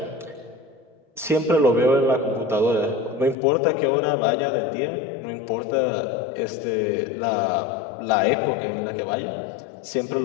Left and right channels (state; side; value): drops out; right; at 3.4 s